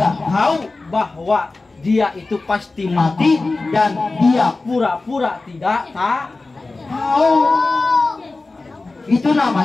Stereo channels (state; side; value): quieter; right; 3.5 dB